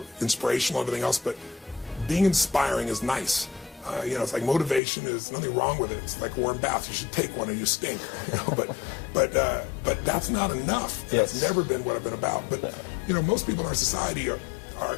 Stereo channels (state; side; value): drops out; right; at 4.8 s